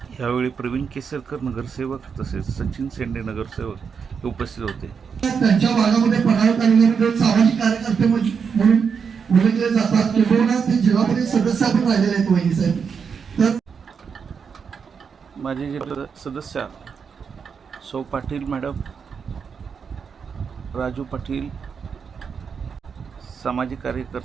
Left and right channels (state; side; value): quieter; left; 6.2 dB